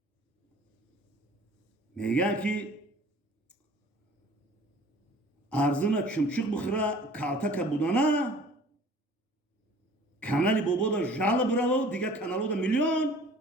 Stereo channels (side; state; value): both; normal; correlation 0.49